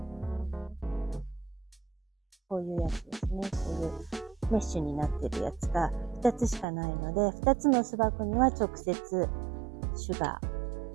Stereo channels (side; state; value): left; drops out; at 6.7 s